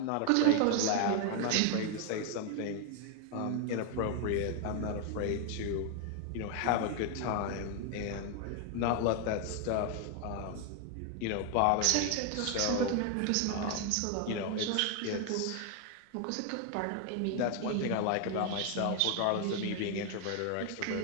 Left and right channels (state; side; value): different; both; correlation 0.00